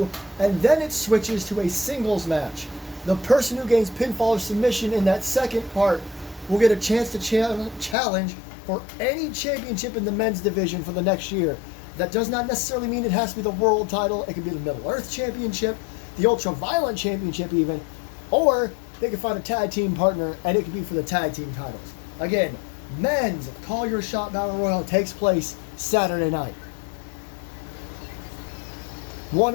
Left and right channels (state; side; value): drops out; right; at 8.0 s